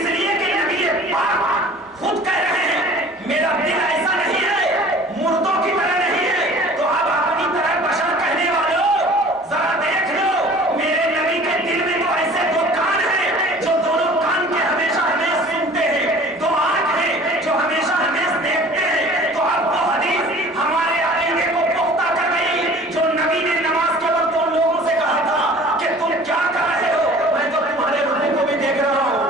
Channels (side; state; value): both; normal; correlation 0.46